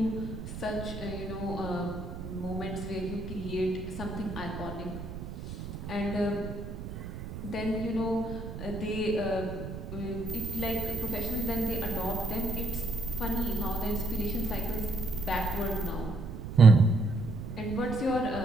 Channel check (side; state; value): right; noise; rumble, 9 dB below the sound